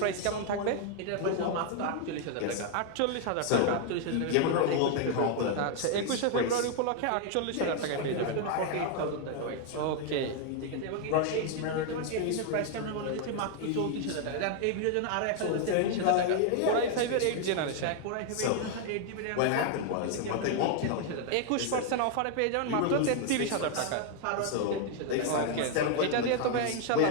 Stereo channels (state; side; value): different; both; correlation 0.00